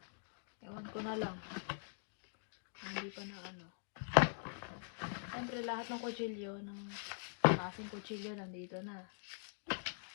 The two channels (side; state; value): right; silent; digital silence